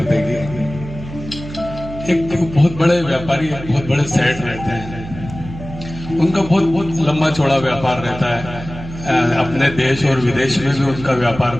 देगी। एक बहुत बड़े व्यापारी, बहुत बड़े सेठ रहते हैं। उनका बहुत लंबा चौड़ा व्यापार रहता है। अपने देश और विदेश में भी उनका व्यापार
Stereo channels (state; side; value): noise; right; hum, 12 dB below the sound